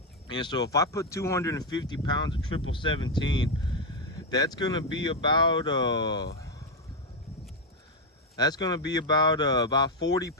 And so if I put 250 pounds of 1717 that's gonna be about about 40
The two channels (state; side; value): normal; both; correlation 0.04